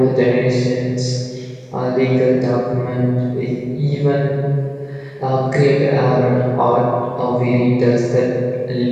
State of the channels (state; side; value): identical; both; correlation 1.00